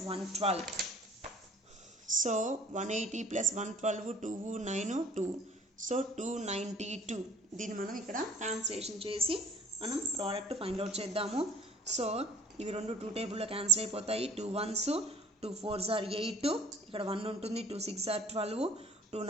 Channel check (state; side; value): normal; both; correlation 0.50